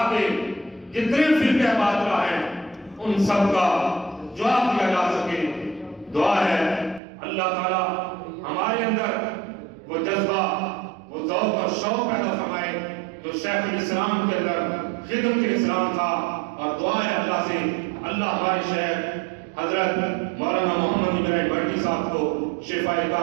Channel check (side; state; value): left; drops out; at 7.0 s